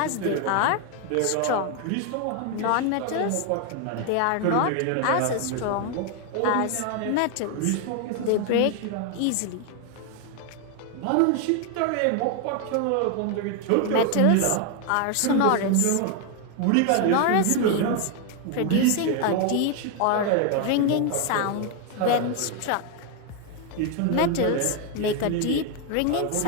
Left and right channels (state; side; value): different; both; correlation 0.01